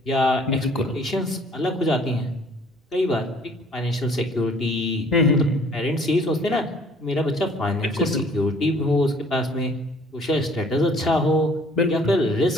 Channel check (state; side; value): normal; both; correlation 0.56